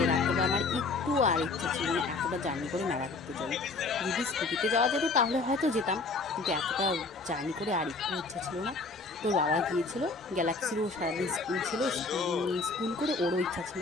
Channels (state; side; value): quieter; right; 3.8 dB